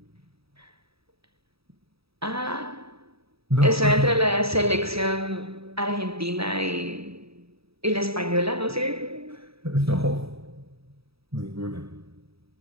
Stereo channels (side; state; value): left; late; 0.77 ms